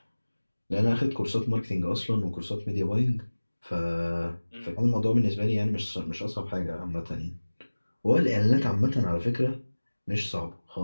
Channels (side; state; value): both; inverted; correlation -1.00